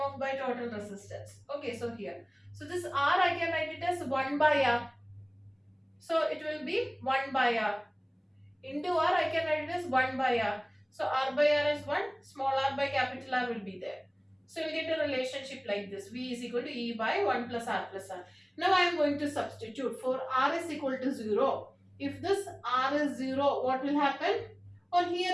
by total resistance. Okay, so here, so this R I can write it as 1 by R, so it will be 1 by R into R, I can write it as 1 by R, so R by R is 1, small r by capital R will be there. So you get a relationship like this, V is equal to E by 1 plus R plus R. Now I am going to substitute. For R is equal to 0. If this R is 0, what will happen? Or here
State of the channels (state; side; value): identical; both; correlation 1.00